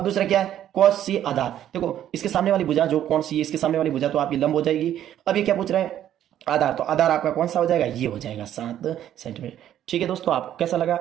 दूसरा क्या है cos C आधार, देखो इसके सामने वाली भुजा जो कोण C है इसके सामने वाली भुजा, तो आपकी लंब हो जाएगी। अब ये क्या पूछ रहे हैं आधार, तो आधार आपका कौन सा हो जाएगा, ये हो जाएगा 7 सेंटीमीटर। ठीक है दोस्तों, आपको कैसा लगा,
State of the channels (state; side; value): quieter; left; 11.2 dB